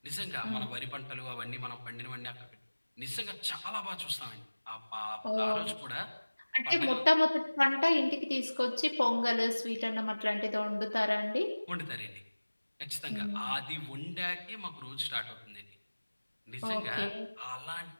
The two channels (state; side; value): inverted; both; correlation -1.00